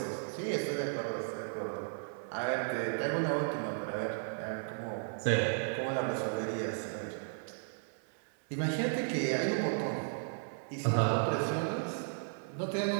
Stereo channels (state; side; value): silent; left; 54 dB below the other